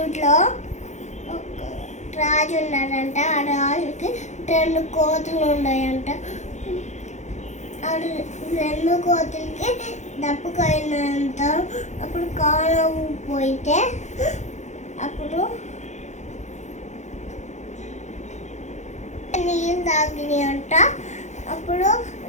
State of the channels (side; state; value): right; late; 0.34 ms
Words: ఒక రాజు ఉన్నాడంట. ఆ రాజుకి 2 కోతులు ఉన్నాయంట. ఆ 2 కోతులకి దప్పుకైనంత అప్పుడు కాలం పోయితే అప్పుడు నీళ్ళు తాగినాయంట. అప్పుడు